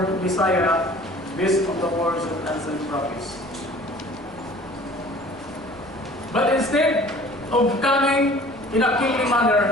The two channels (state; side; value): noise; right; rumble, 24 dB below the sound